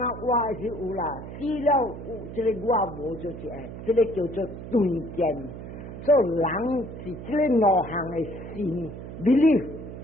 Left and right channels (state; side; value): noise; right; hum, 11 dB below the sound